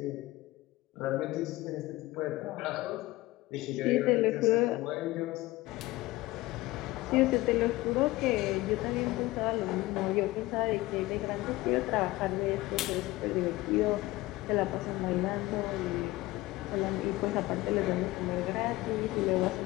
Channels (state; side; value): quieter; right; 19.1 dB